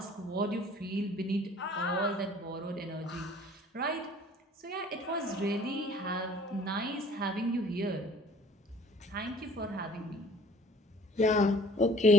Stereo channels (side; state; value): both; normal; correlation 0.53